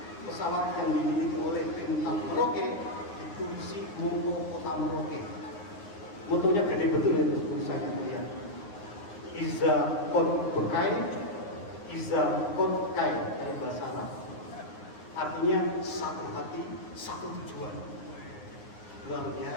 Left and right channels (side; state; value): right; late; 9.5 ms